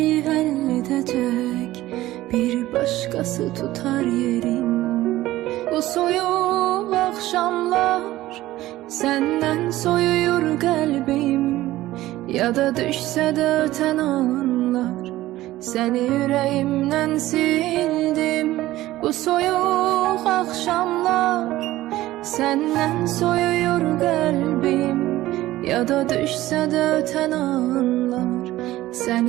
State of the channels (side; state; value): left; quieter; 16.1 dB